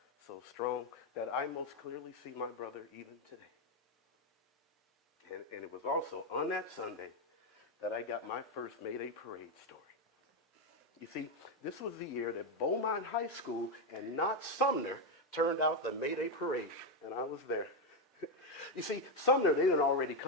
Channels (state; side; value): normal; both; correlation 0.06